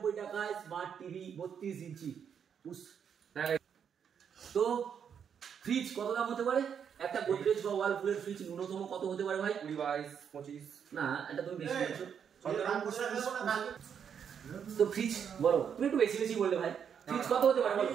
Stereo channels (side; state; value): left; quieter; 7.7 dB